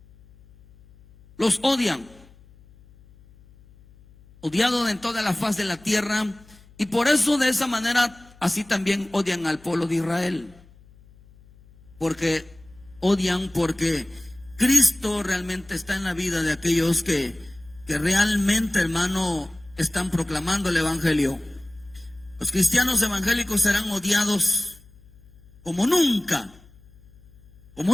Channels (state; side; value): noise; left; hum, 26 dB below the sound